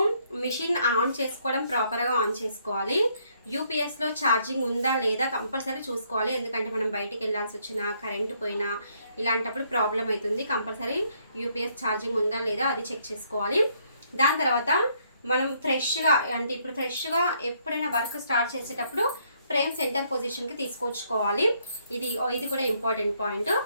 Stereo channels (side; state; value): both; inverted; correlation -0.70